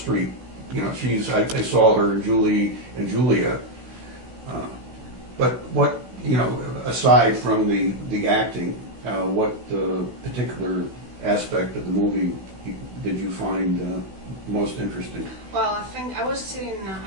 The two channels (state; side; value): late; left; 16 ms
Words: You know, I saw her in Julia. But what, you know, aside from the acting, what particular aspect of the movie did you find most interesting? Well, I think I was sitting.